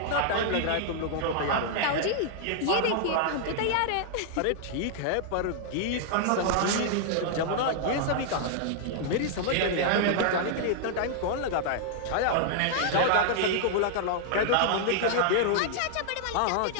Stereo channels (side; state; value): both; different; correlation -0.01